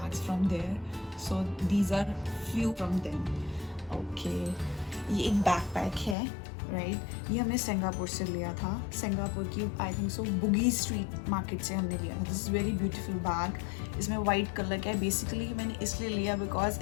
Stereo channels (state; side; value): drops out; right; at 6.2 s